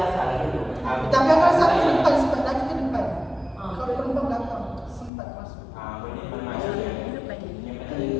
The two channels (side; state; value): right; drops out; at 5.1 s